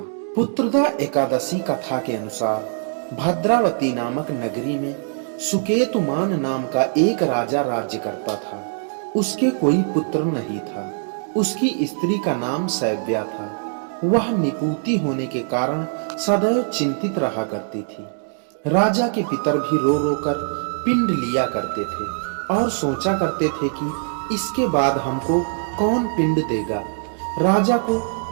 पुत्रदा एकादशी कथा के अनुसार भद्रावती नामक नगरी में सुकेतुमान नाम का एक राजा राज्य करता था। उसके कोई पुत्र नहीं था। उसकी स्त्री का नाम सैव्या था। वह निपुती होने के कारण सदैव चिंतित रहा करती थी। राजा के पितर भी रो रो कर पिंड लिया करते थे और सोचा करते थे कि इसके बाद हमको कौन पिंड देगा। राजा को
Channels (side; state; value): left; silent; digital silence